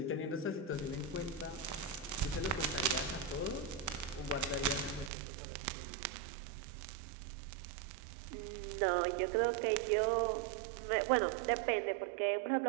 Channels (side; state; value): left; drops out; at 5.1 s